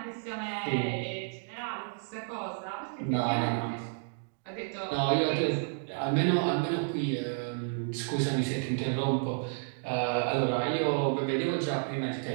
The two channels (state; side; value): silent; left; digital silence